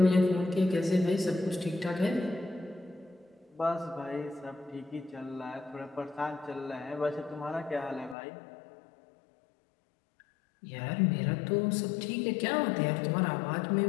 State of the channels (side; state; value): right; drops out; at 8.2 s